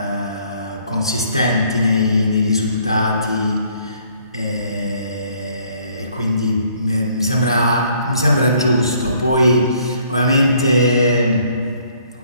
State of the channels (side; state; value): both; inverted; correlation -0.63